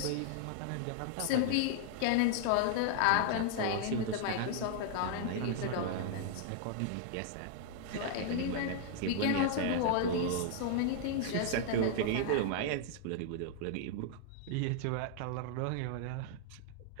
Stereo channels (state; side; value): different; both; correlation 0.00